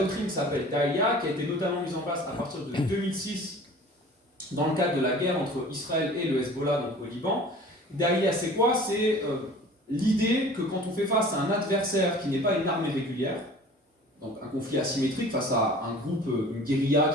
qui s'appelle Daïa, qui a été notamment mise en place à partir de 2006 dans le cadre de la guerre entre Israël et le Hezbollah, donc au Liban. Daïa, c'est quoi? C'est l'idée que quand on fait face à un adversaire qui n'est pas une armée régulière, donc un conflit asymétrique face à un groupe, une guérilla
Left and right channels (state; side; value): normal; both; correlation 0.44